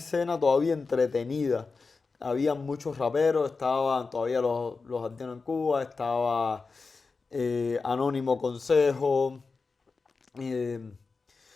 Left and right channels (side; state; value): right; quieter; 4.3 dB